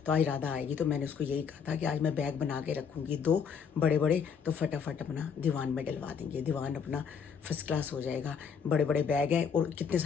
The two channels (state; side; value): quieter; right; 6.7 dB